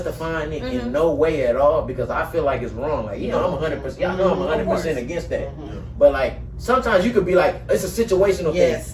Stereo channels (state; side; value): identical; both; correlation 1.00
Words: it in no way at all because I feel like it's wrong. Like I'm 100%. Y'all know I'm 100% against that. But like sometimes you could be like it's a situational Yes,